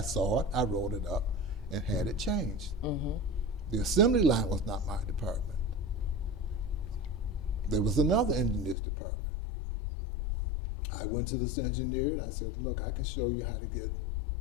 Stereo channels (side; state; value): right; drops out; at 8.8 s